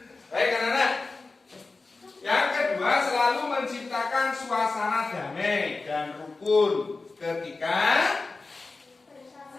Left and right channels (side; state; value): right; quieter; 3.7 dB